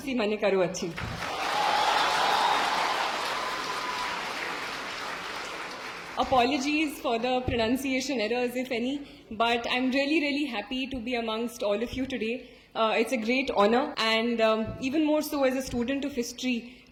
माने करू अच्छी Apologies for the pronunciation errors, if any, but I'm really happy to be amongst all of you today. It's a great honor, and even more so as a student of history,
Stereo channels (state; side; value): identical; both; correlation 1.00